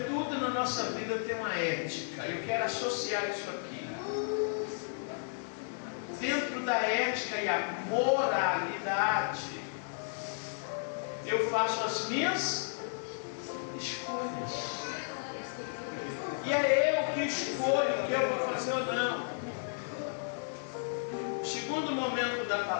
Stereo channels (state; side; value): silent; right; digital silence